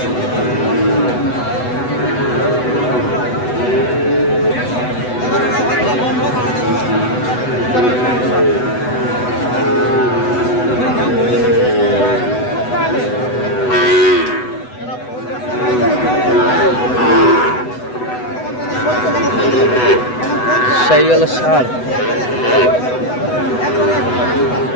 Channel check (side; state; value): right; late; 8.0 ms